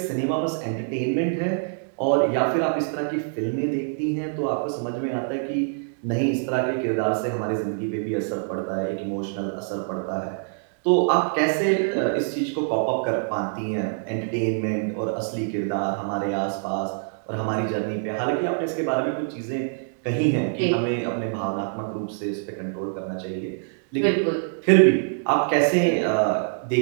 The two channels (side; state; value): left; silent; digital silence